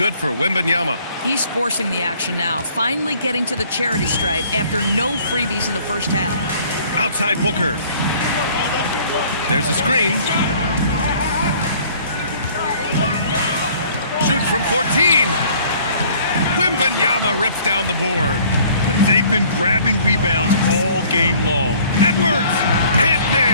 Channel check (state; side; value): inverted; both; correlation -0.55